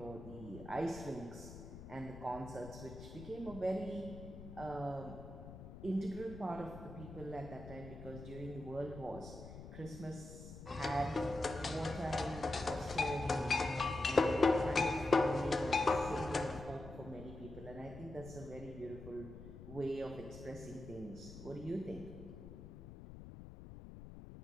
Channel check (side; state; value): left; noise; rumble, 13 dB below the sound